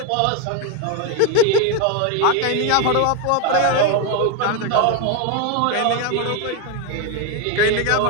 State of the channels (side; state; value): both; different; correlation 0.01